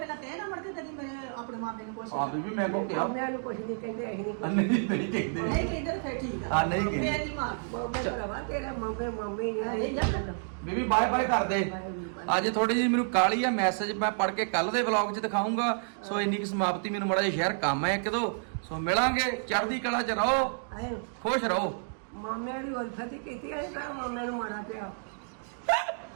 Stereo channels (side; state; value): left; silent; digital silence